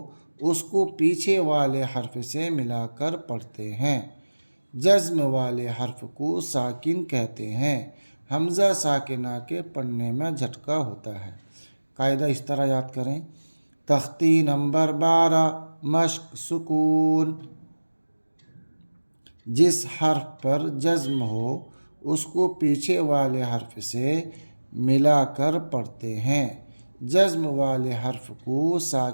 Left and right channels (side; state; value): both; inverted; correlation -1.00